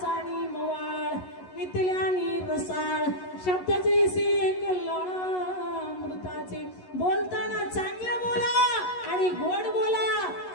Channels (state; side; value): late; right; 11 ms